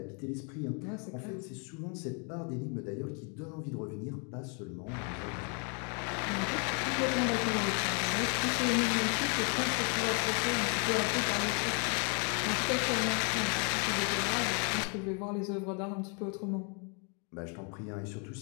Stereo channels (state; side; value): quieter; right; 37.9 dB